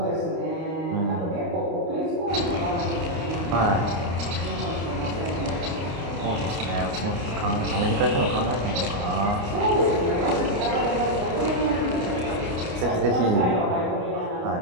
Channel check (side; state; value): left; late; 29 ms